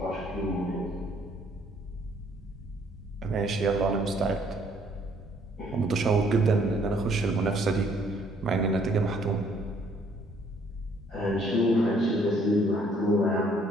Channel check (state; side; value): normal; both; correlation 0.64